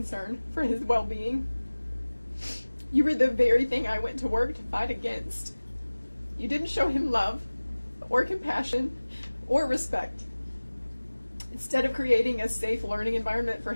for his well-being. You were the very thing I went to work to fight against. You didn't show him love, or compassion, or respect. Instead of creating a safe learning environment for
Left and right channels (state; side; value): inverted; both; correlation -1.00